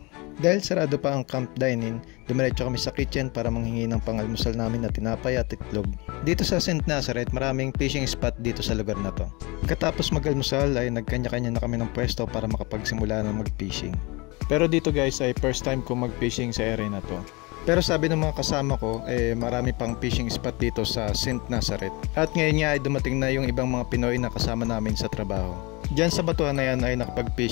Dahil sarado pa ang camp dining, dumiretso kami sa kitchen para manghingi ng pangalmusal namin na tinapay at itlog. Dito sa St. Nazareth, maraming fishing spot dito sa lugar na to. Katapos mag-almusal ay nagkanya-kanya na kami ng pwesto para makapagsimula ng mag-fishing. Pero dito guys ay first time ko mag-fishing sa area na to. Pero sabi ng mga kasama ko, marami pang fishing spot dito sa St. Nazareth. At ngayon nga ay dumating na yung ibang mga Pinoy na kasama namin sa trabaho. Diyan sa batuhan na yan ay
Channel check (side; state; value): right; quieter; 26.3 dB